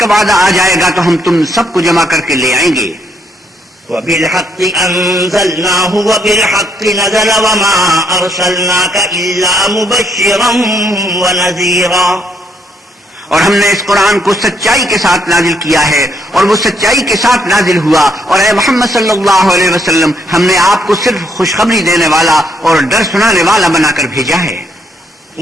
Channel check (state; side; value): normal; both; correlation 0.72